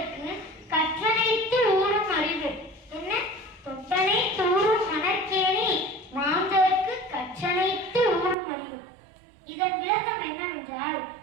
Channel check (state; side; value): drops out; left; at 8.3 s